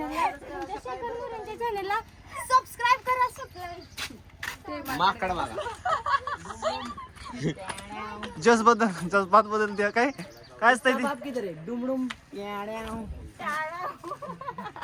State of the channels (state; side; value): identical; both; correlation 1.00